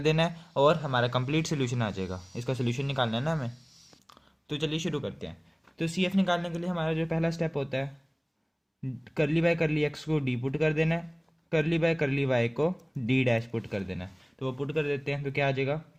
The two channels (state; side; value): identical; both; correlation 1.00